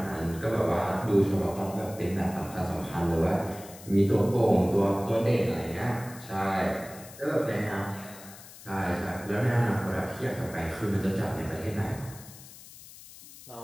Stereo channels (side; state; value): left; noise; hiss, 18 dB below the sound